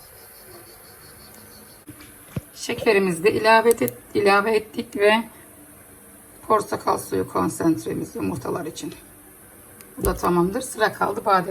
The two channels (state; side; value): identical; both; correlation 1.00